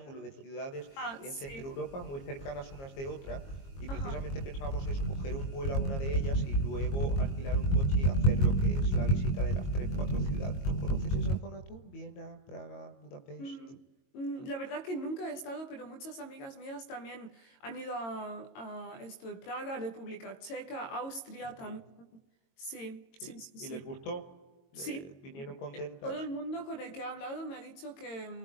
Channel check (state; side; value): late; right; 22 ms